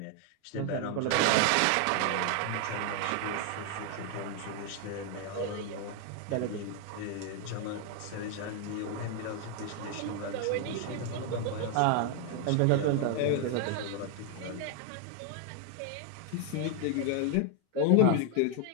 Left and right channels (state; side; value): different; both; correlation 0.01